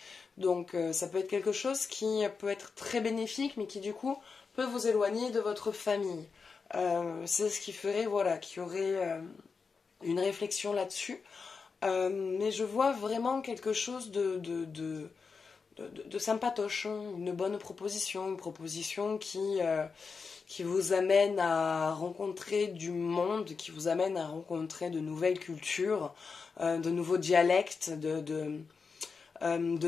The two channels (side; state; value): right; quieter; 5.1 dB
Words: Donc ça peut être quelque chose qui peut être très bénéfique, mais qui du coup peut vous éloigner de votre famille. C'est ce qui ferait, voilà, qu'il y aurait une réflexion là-dessus. Mais je vois vraiment quelque chose de sympatoche, hein, une bonne proposition, une proposition qui vous amène à rencontrer du monde, qui vous amène à rencontrer de nouvelles cultures, de nouveaux dialectes, de